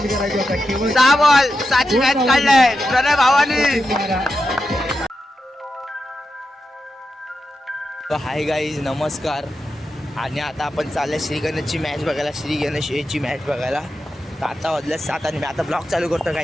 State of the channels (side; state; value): both; normal; correlation 0.89